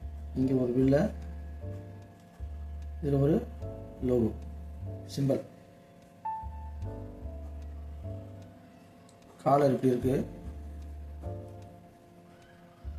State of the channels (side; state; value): both; identical; correlation 1.00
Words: இங்கே ஒரு வில்ல, இதில் ஒரு லோகோ சிம்பல். காலர் இப்படி இருக்குது,